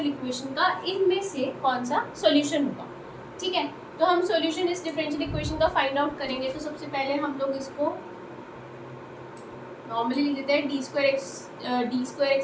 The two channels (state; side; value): identical; both; correlation 1.00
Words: इक्वेशन का इनमें से कौन सा सॉल्यूशन होगा। ठीक है, तो हम सॉल्यूशन इस डिफरेंशियल इक्वेशन का फाइंड आउट करेंगे। तो सबसे पहले हम लोग इसको नॉर्मली लिख देते हैं D square